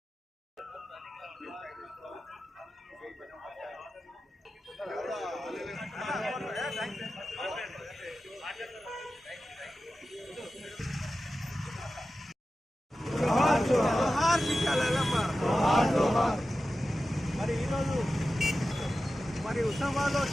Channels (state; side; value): normal; both; correlation 0.93